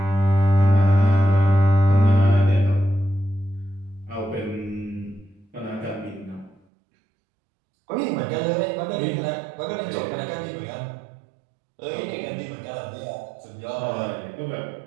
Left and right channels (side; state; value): left; drops out; at 6.6 s